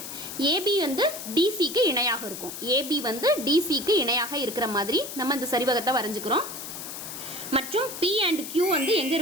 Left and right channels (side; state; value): left; noise; hiss, 9 dB below the sound